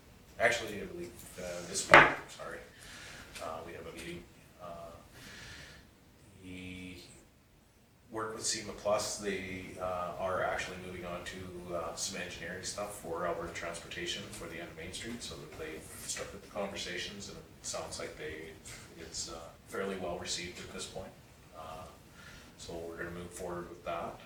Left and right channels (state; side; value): identical; both; correlation 1.00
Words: Actually, I believe this week, sorry. We have a meeting. The work with SEMA Plus, they are actually moving on to some engineering stuff for Alberta Transportation for the end of Main Street, so that they've started the conversations, and it sounds like it's fairly well received at this point. So we're going to move forward with that.